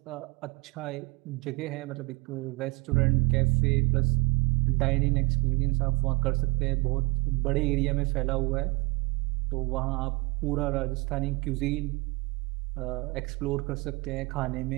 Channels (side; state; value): left; quieter; 25.7 dB